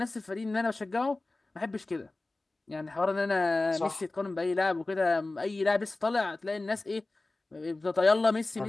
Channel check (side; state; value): right; quieter; 3.1 dB